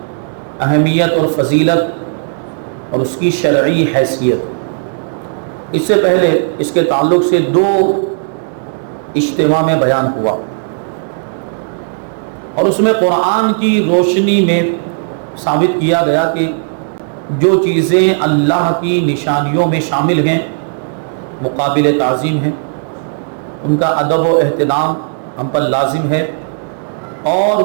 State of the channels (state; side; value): silent; left; digital silence